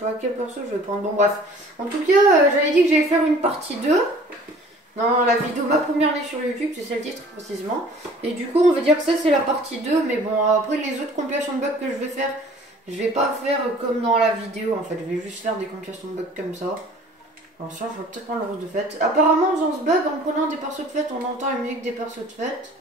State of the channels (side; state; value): both; normal; correlation 0.50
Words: quel perso je vais prendre. Bon bref. En tout cas j'avais dit que j'allais faire une partie 2. Dans la vidéo ma première année sur YouTube, c'est celle titre précisément. Et du coup on va dire que ça c'est la partie 2. Mais bon après les autres compilations de bugs que je vais faire, je vais pas faire comme dans la vidéo en fait. Je vais juste faire des compilations de bugs comme ça. Alors ça je vais peut-être prendre le rose de fête. Apparemment en faisant ce bug, en prenant des persos de fête, on entend la musique des persos de fête.